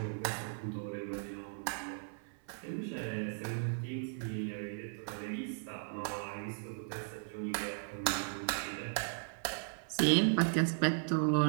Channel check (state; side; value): silent; left; 53 dB below the other